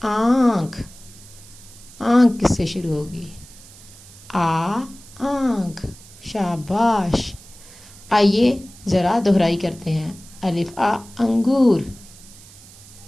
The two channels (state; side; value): noise; right; hiss, 21 dB below the sound